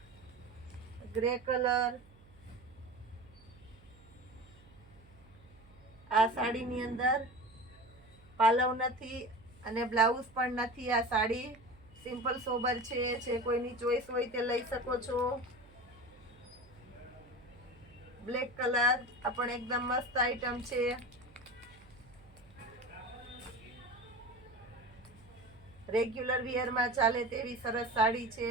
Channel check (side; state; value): right; noise; hum, 25 dB below the sound